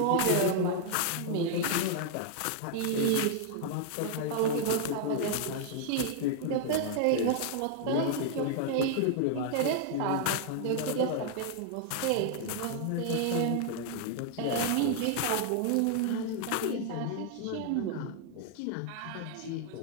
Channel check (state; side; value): different; both; correlation 0.00